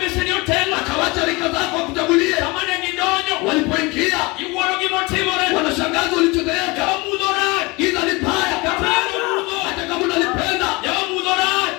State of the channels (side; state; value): right; quieter; 24.9 dB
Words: Akawacha rika zako wakutangulie. Walipoingia wanashangaza walichotendeka. Giza ni baya. Hata kama unalipenda.